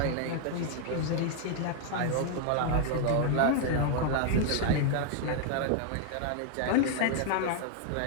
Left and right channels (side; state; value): both; different; correlation 0.00